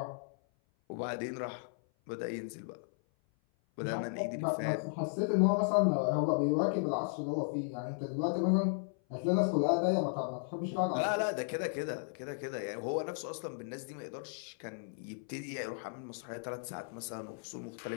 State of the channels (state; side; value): silent; right; 54 dB below the other